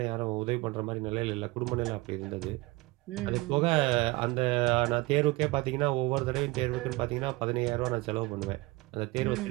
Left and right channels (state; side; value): quieter; left; 22.6 dB